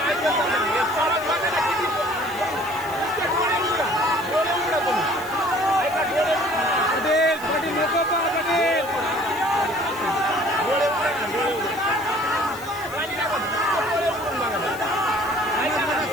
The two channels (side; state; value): left; noise; hiss, 17 dB below the sound